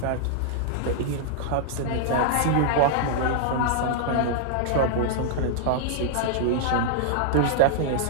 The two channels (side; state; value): both; different; correlation -0.01